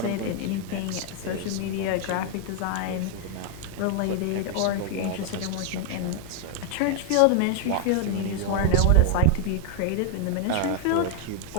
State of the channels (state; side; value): different; both; correlation 0.00